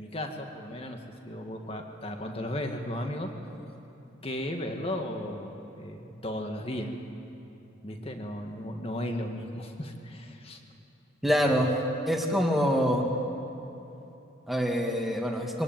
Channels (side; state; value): both; normal; correlation 0.68